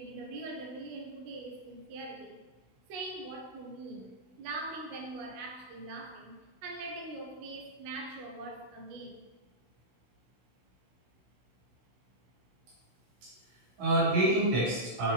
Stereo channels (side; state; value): left; late; 16 ms